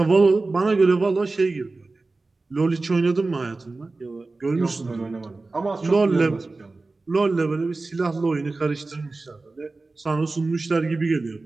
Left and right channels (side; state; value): left; quieter; 3.5 dB